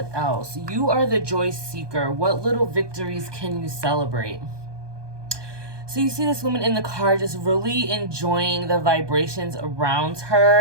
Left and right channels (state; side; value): late; left; 1.2 ms